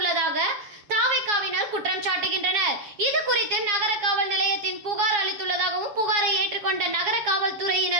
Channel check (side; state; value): left; late; 7.2 ms